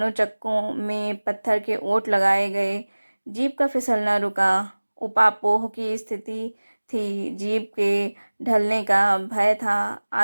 चक्कों में पत्थर के ओट लगाए गए। जीप का फिसलना रुका। उपापोह की स्थिति थी। जीप के ढलने का भय था।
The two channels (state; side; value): inverted; both; correlation -1.00